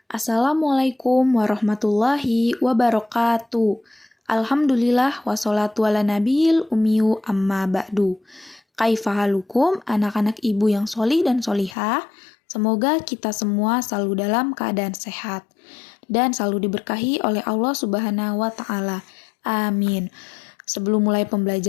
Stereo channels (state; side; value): drops out; right; at 11.8 s